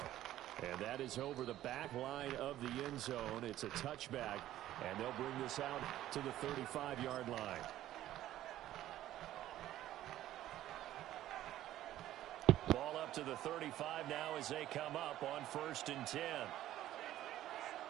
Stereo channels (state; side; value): quieter; left; 13.5 dB